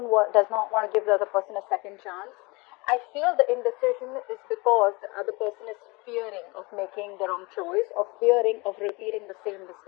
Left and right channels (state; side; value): quieter; right; 25.8 dB